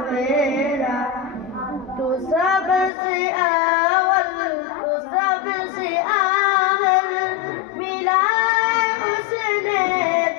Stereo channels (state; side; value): drops out; right; at 2.9 s